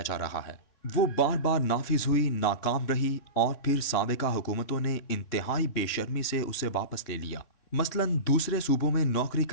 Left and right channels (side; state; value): right; late; 3.6 ms